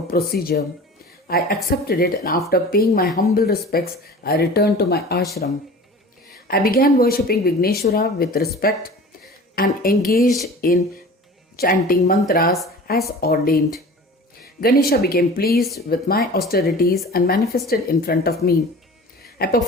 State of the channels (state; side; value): normal; both; correlation 0.40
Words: procedure. I accepted it and after paying my humble respects, I returned to my ashram. I began worshipping Vigneshwara with respect and engaged in chanting mantras as ordained. Ganesha became pleased with my austerities and manifested in front of me. I